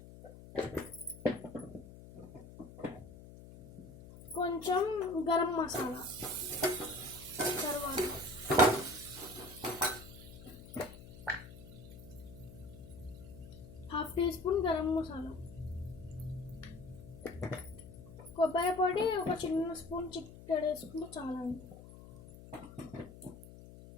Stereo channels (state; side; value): noise; left; hum, 16 dB below the sound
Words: కొంచెం గరం మసాలా, తర్వాత 1/2 టీ స్పూన్ గరం మసాలా, కొబ్బరి పొడి ఒక చిన్న స్పూన్ చిక్కడి వేసుకుంటే చాలా.